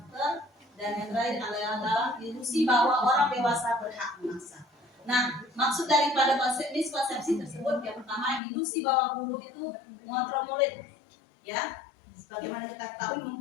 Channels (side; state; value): right; drops out; at 8.4 s